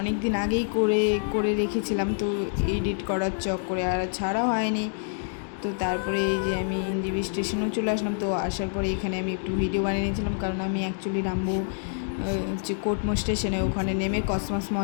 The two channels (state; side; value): silent; right; 60 dB below the other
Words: দিন আগেই করে রেখেছিলাম, তো এডিট করার চক্করে আর ছাড়া হয়নি। তো তারপরে এই যে আমি এনজেপি স্টেশনেও চলে আসলাম। তো আসার পরে এখানে আমি একটু ভিডিও বানিয়ে নিয়েছিলাম, কারণ আমি অ্যাকচুয়ালি নামবো হচ্ছে কোটমো স্টেশনে। ওখানে নেমে কসমস